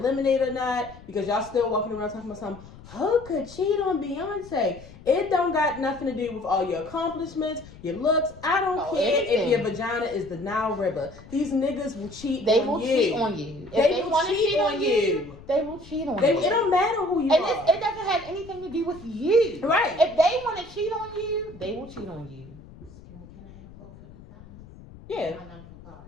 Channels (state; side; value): noise; left; rumble, 19 dB below the sound